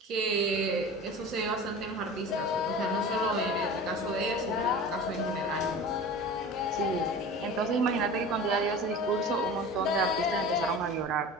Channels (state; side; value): normal; both; correlation 0.35